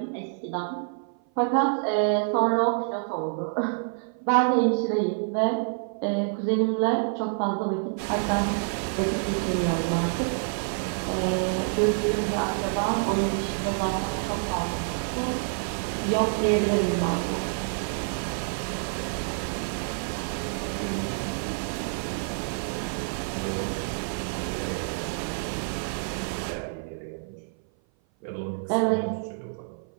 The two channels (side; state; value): left; silent; 56 dB below the other